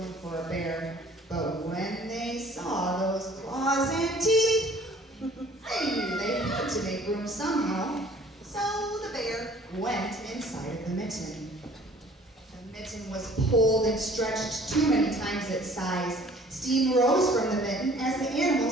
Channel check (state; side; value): normal; both; correlation 0.53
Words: for a bear. But when they saw those claws and teeth, they knew they had to make room somehow. So the bear went inside of the mitten. The mitten was pulled and stretched too many times its size. Steam rose from the mitten as the